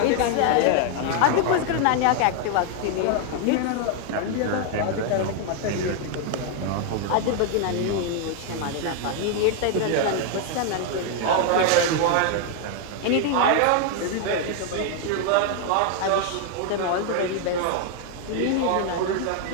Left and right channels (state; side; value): different; both; correlation 0.00